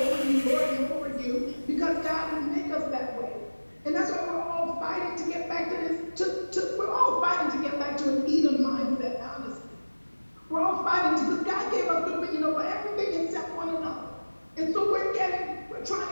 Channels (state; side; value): inverted; both; correlation -1.00